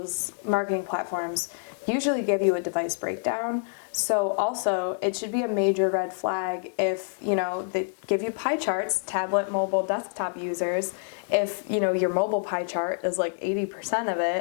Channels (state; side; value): silent; right; 60 dB below the other